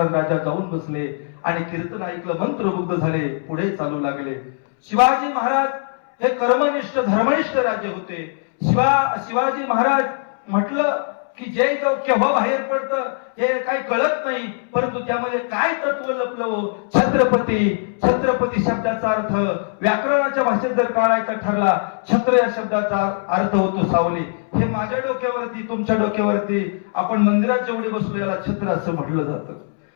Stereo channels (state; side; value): silent; right; 65 dB below the other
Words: राजा जाऊन बसले, आणि कीर्तन ऐकलं, मंत्रमुग्ध झाले, पुढे चालू लागले. शिवाजी महाराज हे कर्मनिष्ठ धर्मनिष्ठ राजे होते. शिवाजी महाराज म्हटलं की जय जाऊ केव्हा बाहेर पडतं हे काही कळत नाही, परंतु त्यामध्ये काय तत्व लपलं. छत्रपती शब्दाचा अर्थ व्याकरणाच्या भाषेत जर काढायचा ठरला, छत्र या शब्दाचा अर्थ होतो सावली. हे माझ्या डोक्यावरती, तुमच्या डोक्यावरती, आपण मंदिरात जेवढे बसलो याला छत्र असं म्हटलं जातं.